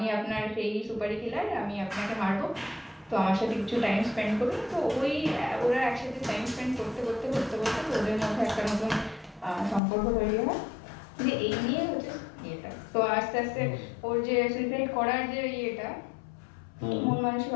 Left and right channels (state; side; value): drops out; right; at 9.8 s